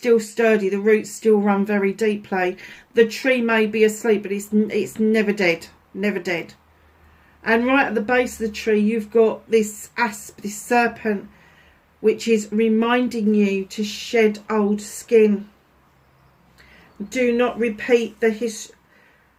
sturdy. The roots still run very deeply. The tree may be asleep, but it's never dead, never dead. And right at the base of the tree, you've got this asp, this serpent, which is reminding you to shed old skin. Do not repeat the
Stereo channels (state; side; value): identical; both; correlation 1.00